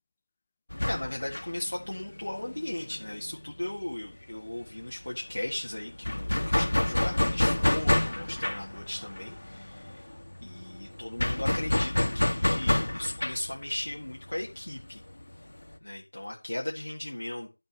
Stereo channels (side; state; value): both; inverted; correlation -1.00